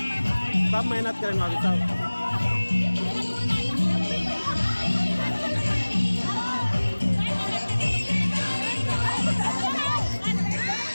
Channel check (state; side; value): inverted; both; correlation -1.00